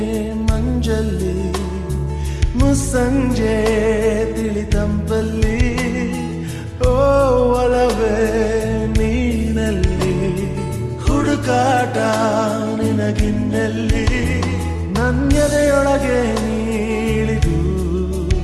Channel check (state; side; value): identical; both; correlation 1.00